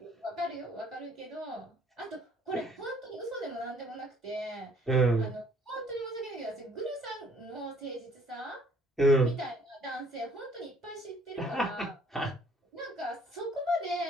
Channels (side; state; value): both; normal; correlation 0.61